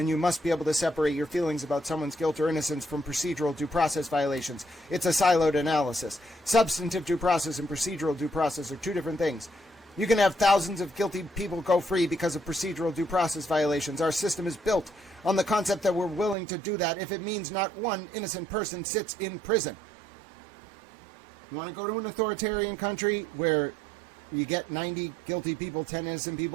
you must be able to separate your feelings about someone's guilt or innocence from procedural due process violations. It's a siloed analysis. Substantive due process and procedural due process are two different things. You can have thousands of guilty people go free because of procedural due process violations. Our system is built on the concept that we're willing to do that if it means not one innocent person sits in prison. You want to go to an authoritarian country where you get 90 guilty people, 10 innocent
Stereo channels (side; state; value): left; drops out; at 16.4 s